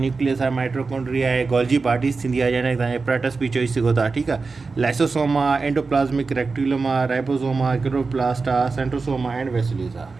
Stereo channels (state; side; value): quieter; left; 4.2 dB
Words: न्यूक्लियस आहे, माइटोकॉन्ड्रिया आहे, गोल्जी बॉडीज़ थींदी आहे, जंहिंखे तव्हां एपरेटस बि चई सघो था, ठीकु आहे। लाइसोसोम आहे, एंडोप्लाज़्मिक रेक्टिकुलम आहे, राइबोसोम आहे, क्लोरोप्लास्ट आहे, सेंट्रोसोम आहे, एंड वेसिल्यूस